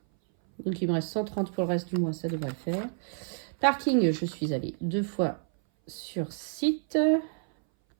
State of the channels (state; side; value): silent; left; 58 dB below the other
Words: Donc, il me reste 130 pour le reste du mois, ça devrait le faire. Parking, je suis allée 2 fois sur site.